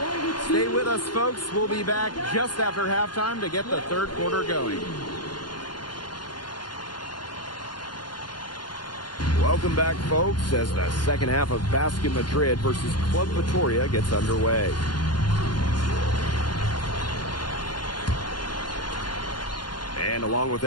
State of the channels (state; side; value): late; right; 0.71 ms